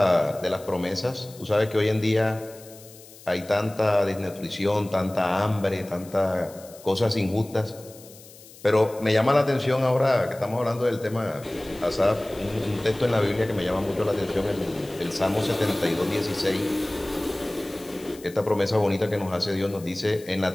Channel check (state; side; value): noise; left; hiss, 21 dB below the sound